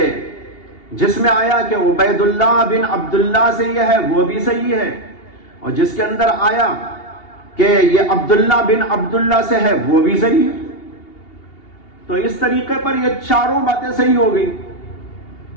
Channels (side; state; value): right; late; 2.8 ms